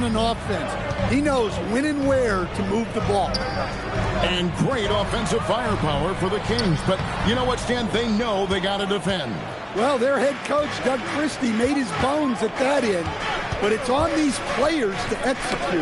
an offense. He knows when and where to move the ball. And great offensive firepower for the Kings. But you know what, Stan? They know they got to defend. Well, their head coach, Doug Christie, made his bones at that end. But it's on these players to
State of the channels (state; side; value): identical; both; correlation 1.00